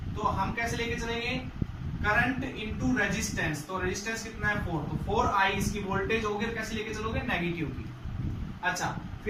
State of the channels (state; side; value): identical; both; correlation 1.00